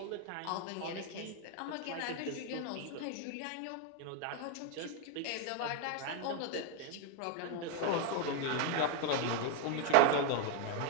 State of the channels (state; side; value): different; both; correlation 0.01